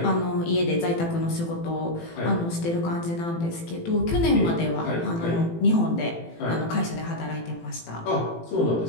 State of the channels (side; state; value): right; late; 18 ms